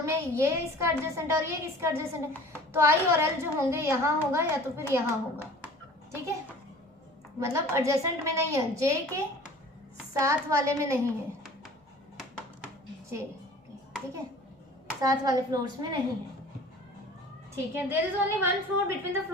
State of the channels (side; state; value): both; normal; correlation 0.45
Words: में ये इसका एडजेसेंट और ये इसका एडजेसेंट है, तो I और L जो होंगे यहाँ होगा या तो फिर यहाँ होगा, ठीक है, मतलब एडजेसेंट में नहीं है, J के साथ वाले में नहीं है, J ठीक है, साथ वाले फ्लोर्स में नहीं है, ठीक है। There is only one floor between the